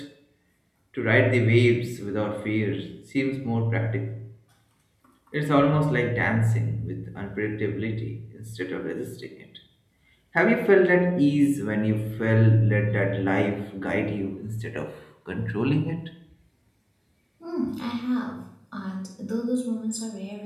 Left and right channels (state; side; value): identical; both; correlation 1.00